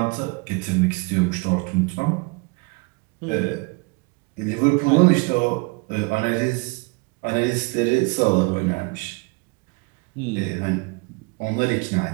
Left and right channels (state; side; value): quieter; left; 29.3 dB